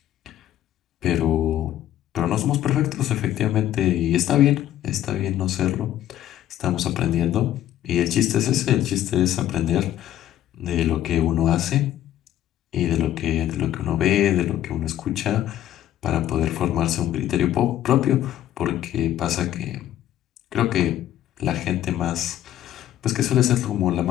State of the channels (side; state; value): right; quieter; 12.3 dB